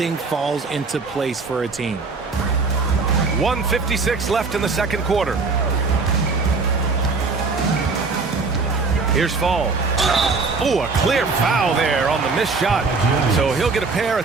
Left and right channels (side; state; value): left; quieter; 4.3 dB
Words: falls into place for a team. 1:56 left in the second quarter. Here's Fall. Oh, a clear foul there on the missed shot. So he'll get a pair